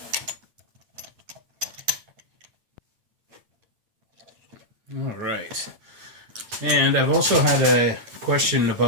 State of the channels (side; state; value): left; late; 9.2 ms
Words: All right. And I've also had a question